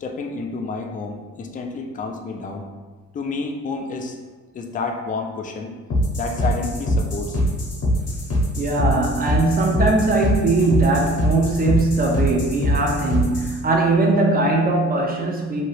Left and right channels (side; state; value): both; normal; correlation 0.51